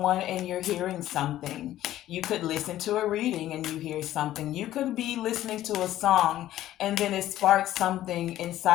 and you're hearing something. You could listen to a reading and you hear something. You could be listening to a song and then it sparks something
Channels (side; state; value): right; quieter; 13.6 dB